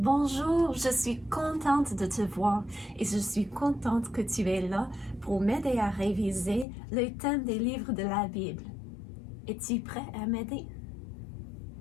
je suis contente de te voir et je suis contente que tu es là pour m'aider à réviser le thème des livres de la Bible. Es-tu prêt à m'aider?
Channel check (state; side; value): drops out; right; at 6.7 s